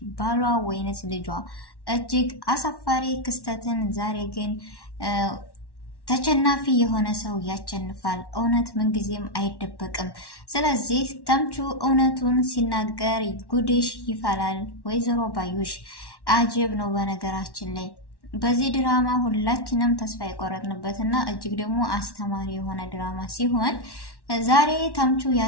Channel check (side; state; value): right; late; 1.1 ms